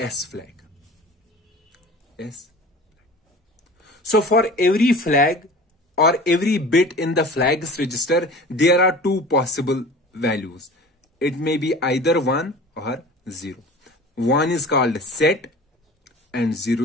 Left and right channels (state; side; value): normal; both; correlation 0.40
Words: flag. S. So for every flag or every bit in the flags register, there are 2 possible values. It may be either 1 or 0. 1 is called set and 0